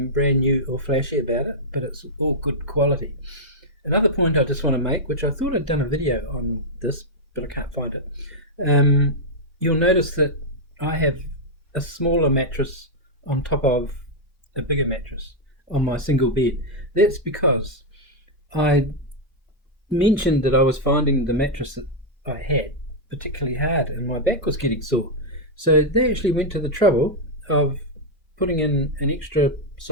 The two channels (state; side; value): normal; both; correlation -0.03